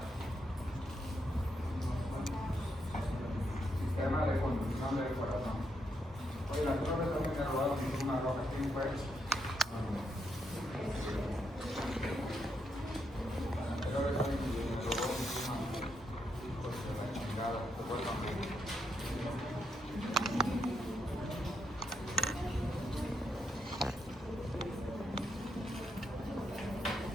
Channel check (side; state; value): both; normal; correlation 0.79